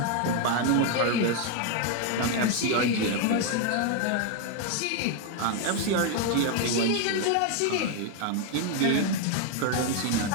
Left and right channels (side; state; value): both; different; correlation 0.01